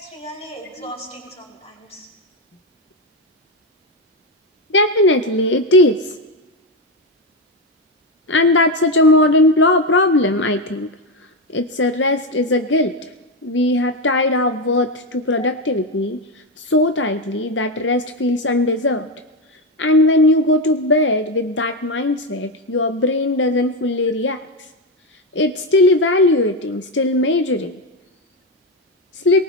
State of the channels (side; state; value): both; normal; correlation 0.10